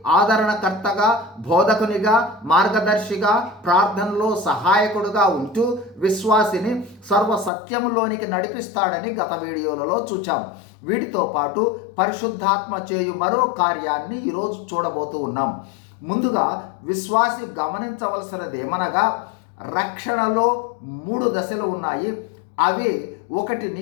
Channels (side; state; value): right; drops out; at 7.5 s